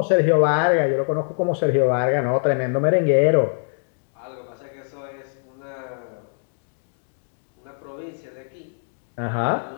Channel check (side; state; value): right; silent; digital silence